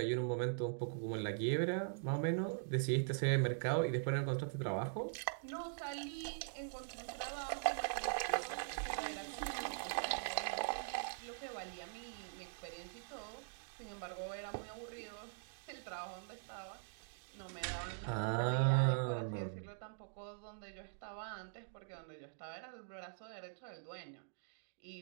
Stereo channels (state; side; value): silent; left; digital silence